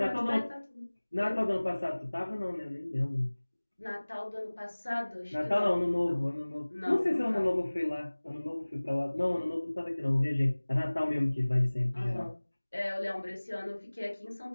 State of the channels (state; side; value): inverted; both; correlation -1.00